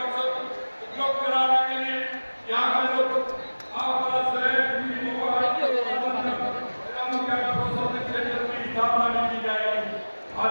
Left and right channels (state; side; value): inverted; both; correlation -1.00